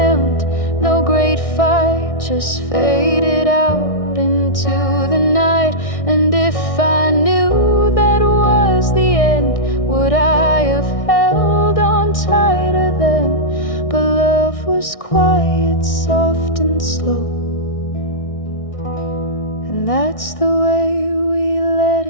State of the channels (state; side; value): late; right; 1.6 ms